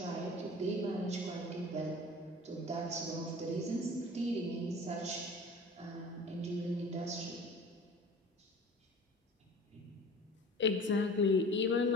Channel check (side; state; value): both; normal; correlation 0.42